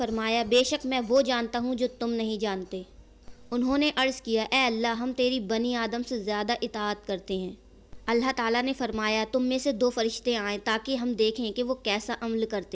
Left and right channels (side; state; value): both; identical; correlation 1.00